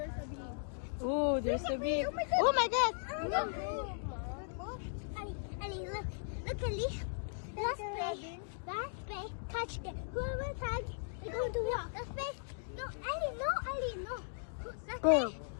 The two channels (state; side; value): silent; right; digital silence